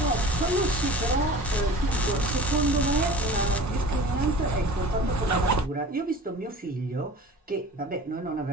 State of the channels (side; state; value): both; normal; correlation 0.40